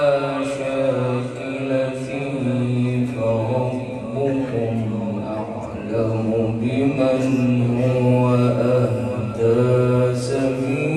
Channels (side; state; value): both; identical; correlation 1.00